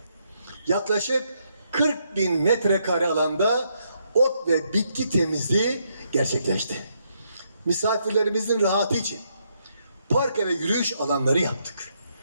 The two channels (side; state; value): both; inverted; correlation -0.76